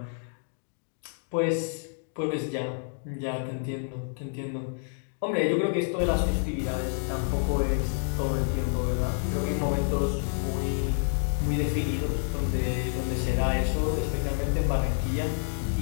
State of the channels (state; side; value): silent; right; digital silence